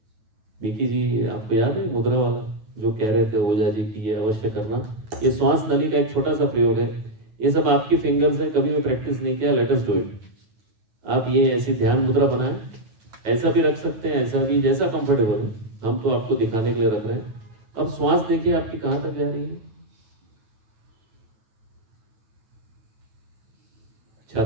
मिकी जी आपको याद है मुद्रा वाला जो कह रहे थे ओझा जी की, ये अवश्य करना. ये श्वास नली का एक छोटा सा प्रयोग है. ये सब आपकी फिंगर्स है, कभी भी प्रैक्टिस नहीं किया, लेट अस डू इट. आप ये ऐसी ध्यान मुद्रा बनाएं, ऐसा भी रख सकते हैं, ऐसा भी, जैसा कंफर्टेबल हो. हम तो आपको दिखाने के लिए रख रहे हैं. अब श्वास देखिए आपकी कहाँ तक जा रही है.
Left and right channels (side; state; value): left; late; 9.2 ms